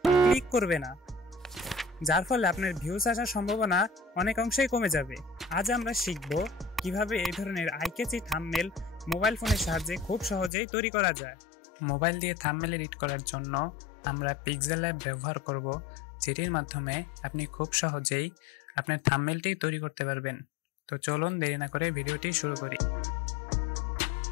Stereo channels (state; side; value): drops out; right; at 10.5 s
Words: ক্লিক করবে না, যার ফলে আপনার ভিউজ আসার সম্ভাবনা অনেক অংশেই কমে যাবে। আজ আমরা শিখব কিভাবে এই ধরনের আই ক্যাচি থাম্বনেল মোবাইল ফোনের সাহায্যে খুব সহজেই তৈরি করা যায়। মোবাইল দিয়ে থাম্বনেল এডিট করার জন্য আমরা পিক্সেল ল্যাব ব্যবহার করব, যেটির মাধ্যমে আপনি খুব সহজেই আপনার থাম্বনেলটি তৈরি করতে পারবেন। তো চলুন দেরি না করে ভিডিওটি শুরু করি।